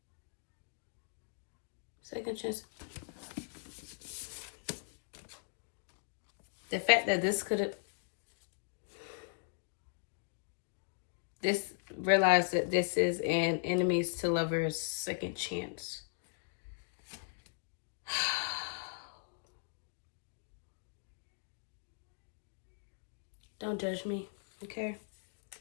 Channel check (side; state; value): right; silent; digital silence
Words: Second chance. The fact that this could have... realize that this is an enemies to lovers second chance. Don't judge me, okay?